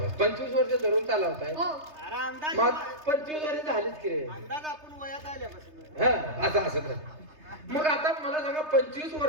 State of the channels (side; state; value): left; late; 3.3 ms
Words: 25 वर्ष धरून चालवताय. हो, अरे अंदाज मग 25 वर्ष झालीच की रे. अंदाज आपण वयात आल्यापासून. हा असं तर मग आता मला सांगा 25